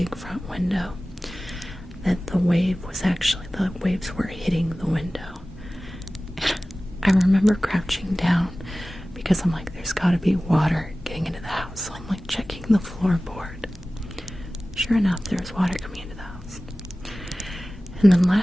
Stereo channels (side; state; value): both; normal; correlation 0.97